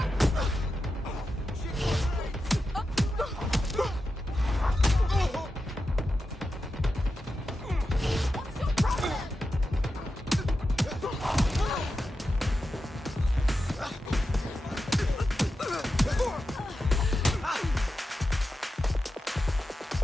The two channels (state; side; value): normal; both; correlation 0.90